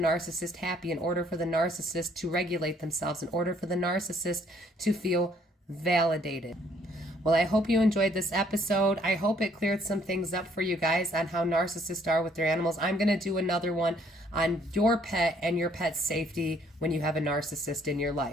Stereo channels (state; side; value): normal; both; correlation 0.64